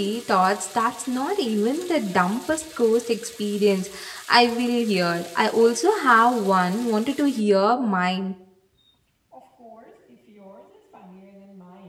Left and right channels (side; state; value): both; identical; correlation 1.00